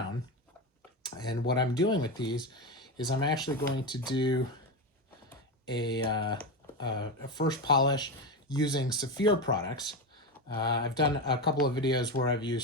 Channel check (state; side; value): normal; both; correlation 0.16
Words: And what I'm doing with these is I'm actually going to do a first polish using Saphir products. I've done a couple of videos where I've